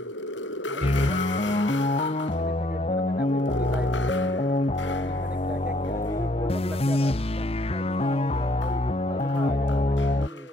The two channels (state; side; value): normal; both; correlation 0.65